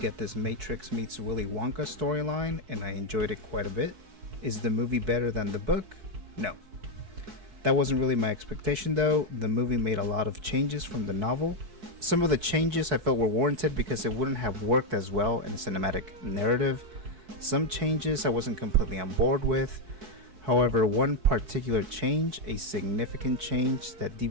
this Matrix meets Willy Wonka storyline and I enjoyed it quite a bit. Is the movie better than the book? No. That wasn't really my expectation though. The movie made a lot of changes from the novel. Some of the changes I felt were warranted because it wouldn't have worked as well in a cinematic narrative. Some changes I wasn't completely on board with. However, one particular change, a significant change that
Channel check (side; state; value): left; late; 4.6 ms